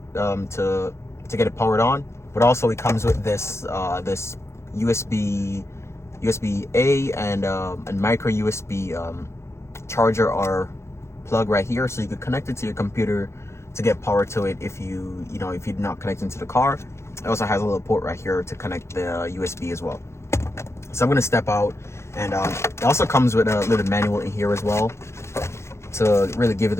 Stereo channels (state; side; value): late; right; 0.13 ms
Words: to get it powered on. But also it comes with this this USB A and micro USB charger or plug right here, so you could connect it to your computer to get power to it if you're not connecting to the car. It also has a little port right here to connect the USB as well. So I'm gonna step out, and it also comes with a little manual in here as well to really give you